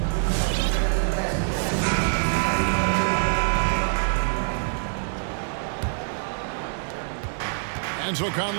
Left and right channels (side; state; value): left; silent; digital silence